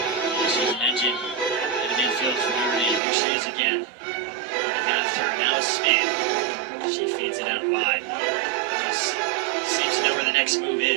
She's an engine in the midfield for Notre Dame. Here she is again. On the half turn, now a spin. She feeds it out wide. Seems to know where the next move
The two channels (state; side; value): drops out; left; at 3.0 s